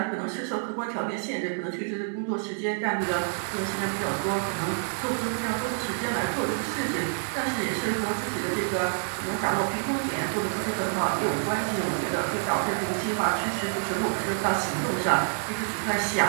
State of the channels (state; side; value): silent; left; 60 dB below the other